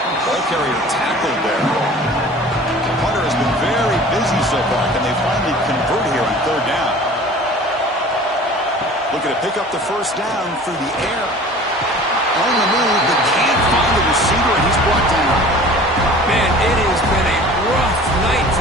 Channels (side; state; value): both; normal; correlation 0.44